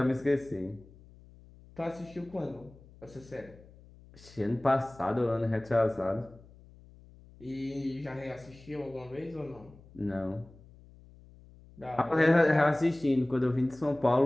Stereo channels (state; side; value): noise; left; hum, 23 dB below the sound